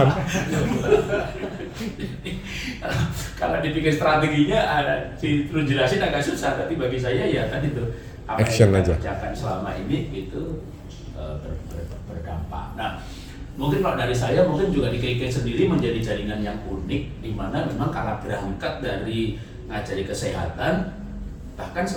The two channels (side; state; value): both; identical; correlation 1.00